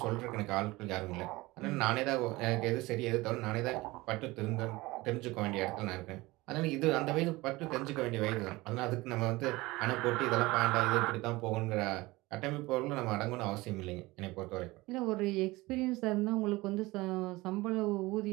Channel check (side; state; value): left; quieter; 20.9 dB